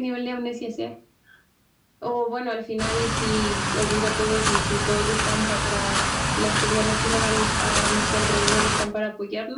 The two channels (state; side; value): identical; both; correlation 1.00